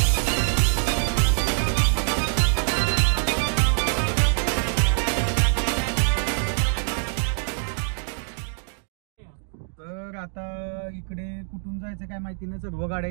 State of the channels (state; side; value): silent; left; digital silence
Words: तर आता इकडे कुठून जायचं काय माहिती नाही. सर्व